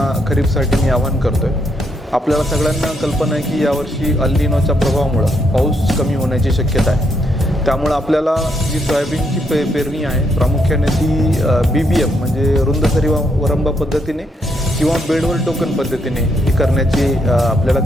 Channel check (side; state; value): both; normal; correlation 0.76